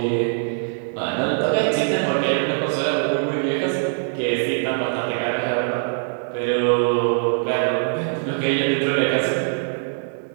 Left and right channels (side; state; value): left; silent; digital silence